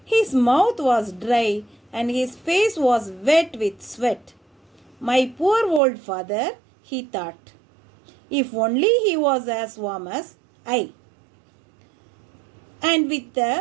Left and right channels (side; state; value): left; drops out; at 5.8 s